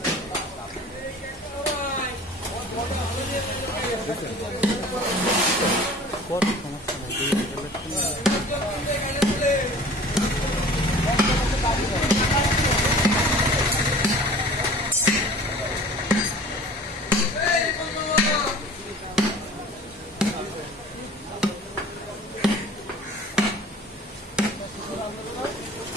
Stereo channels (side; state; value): both; normal; correlation 0.45